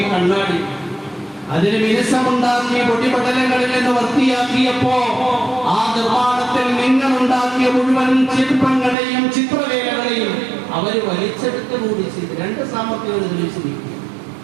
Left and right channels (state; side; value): drops out; left; at 9.0 s